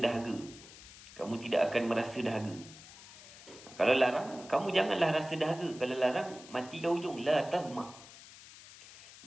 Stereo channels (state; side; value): noise; left; hiss, 18 dB below the sound